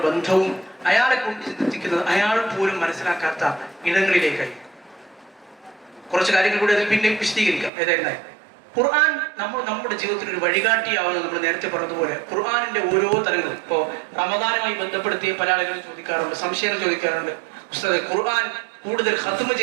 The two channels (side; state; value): left; drops out; at 7.7 s